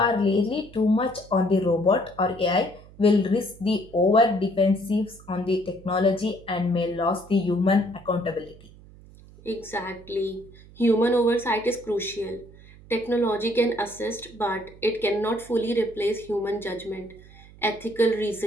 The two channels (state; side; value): noise; right; hum, 22 dB below the sound